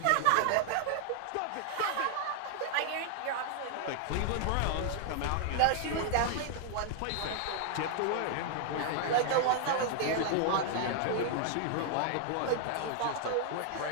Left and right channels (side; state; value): both; different; correlation 0.00